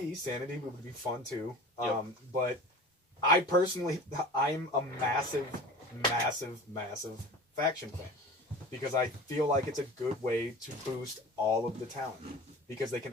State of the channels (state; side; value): normal; both; correlation 0.37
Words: Sanity would be fun too. Yep. But I personally, I'm a massive faction fan because I feel like it's a good way to boost all of the talent because they can